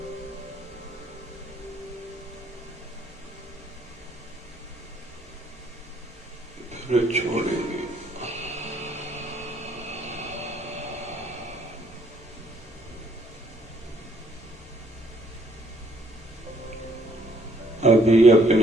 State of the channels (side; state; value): both; normal; correlation 0.66